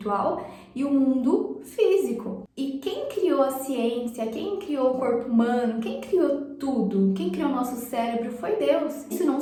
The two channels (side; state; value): both; identical; correlation 1.00